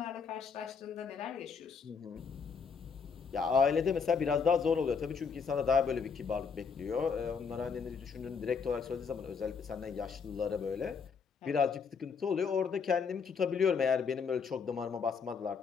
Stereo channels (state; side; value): quieter; right; 5.8 dB